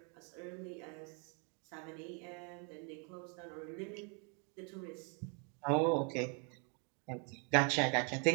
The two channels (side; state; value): left; quieter; 37.2 dB